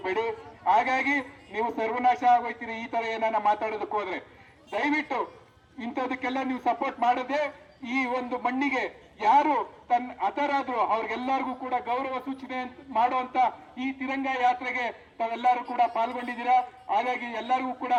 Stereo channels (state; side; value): identical; both; correlation 1.00